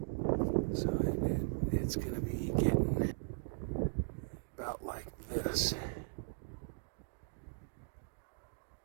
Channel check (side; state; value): left; silent; digital silence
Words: So it's going to be getting about like this.